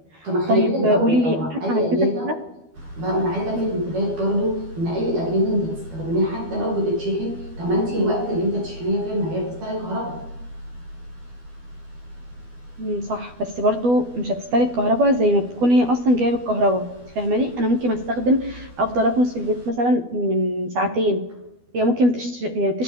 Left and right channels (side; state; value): left; late; 12 ms